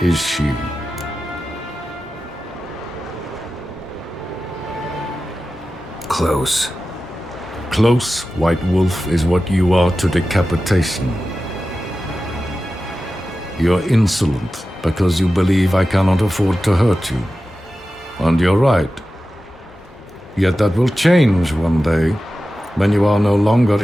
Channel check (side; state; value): both; normal; correlation 0.94